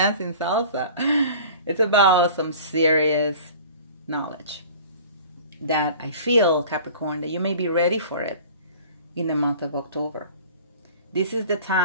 salsa. It's about some serious knowledge that I feel, Capricorn, that you may be ready for it in the month of October. This is the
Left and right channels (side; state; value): both; inverted; correlation -0.43